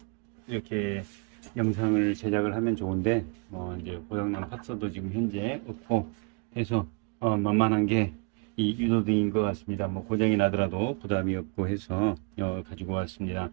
이렇게 영상을 제작을 하면 좋은데, 이제 고장난 파츠도 지금 현재 없고 해서 만만한 게 이 유도등인 것 같습니다. 뭐 고장이 나더라도 부담이 없고 해서 가지고 왔습니다.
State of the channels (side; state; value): left; quieter; 34.3 dB